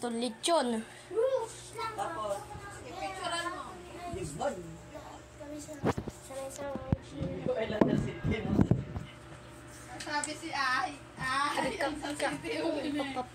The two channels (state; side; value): identical; both; correlation 1.00